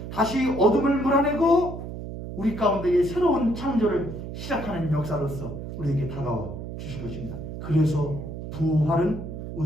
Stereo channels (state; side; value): noise; right; hum, 8 dB below the sound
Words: 다시 어둠을 몰아내고 우리 가운데의 새로운 창조를 시작하는 역사로서 우리에게 다가와 주실 것입니다. 그래서 부활은